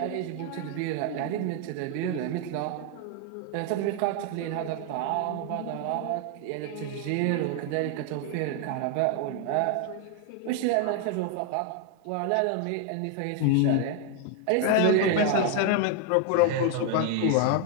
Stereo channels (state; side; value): different; both; correlation 0.01